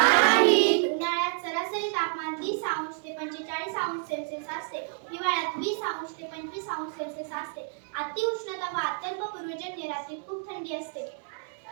उन्हाळ्यात सरासरी तापमान 30 अंश ते 45 अंश सेल्सिअस असते। हिवाळ्यात 20 अंश ते 25 अंश सेल्सिअस असते। अति उष्णता व अत्यल्प पूर्वजन्य रात्री खूप थंडी असते।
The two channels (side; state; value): left; silent; 59 dB below the other